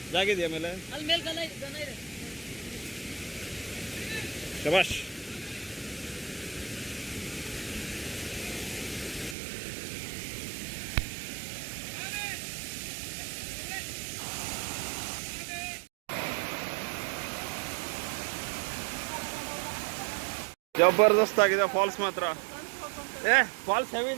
ಜಾಗ ಇದೆಯಾ ಮೇಲೆ? ಅಲ್ಲಿ ಮೇಲೆ ಗನ ಇದೆ. ಶಬಾಷ್. ಜಬರ್ದಸ್ತ್ ಆಗಿದೆ ಫಾಲ್ಸ್ ಮಾತ್ರ. ಫಾಲ್ಸ್ ಹೆವಿ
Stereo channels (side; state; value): left; drops out; at 9.3 s